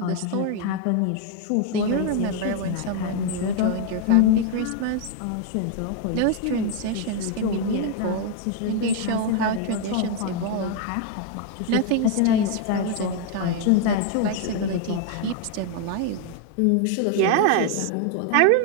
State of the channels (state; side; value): different; both; correlation 0.00